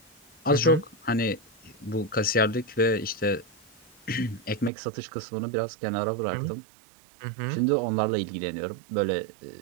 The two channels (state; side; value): drops out; left; at 4.7 s